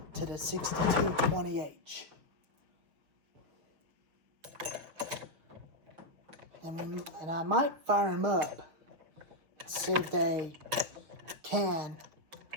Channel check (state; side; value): late; left; 6.4 ms